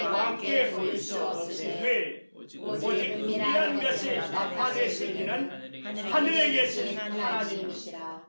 보일 수 없으되 오직 은밀한 것을 나타내실 이는 하늘에 계신 하나님이시라.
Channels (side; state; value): both; inverted; correlation -1.00